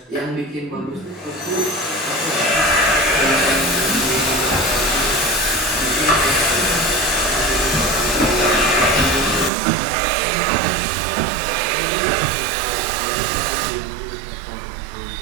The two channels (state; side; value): drops out; left; at 9.5 s